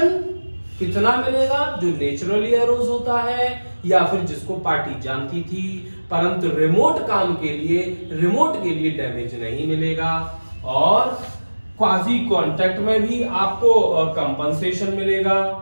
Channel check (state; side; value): inverted; both; correlation -1.00